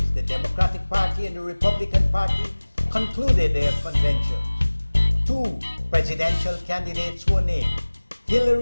the Democratic Party and the Republican Party, concluded their conventions. Two presidential candidates were named.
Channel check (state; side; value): inverted; both; correlation -1.00